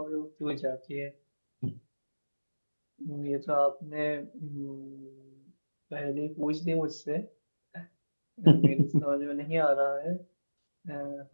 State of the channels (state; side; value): inverted; both; correlation -1.00